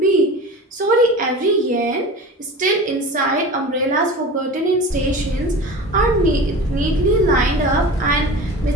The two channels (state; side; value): normal; both; correlation 0.34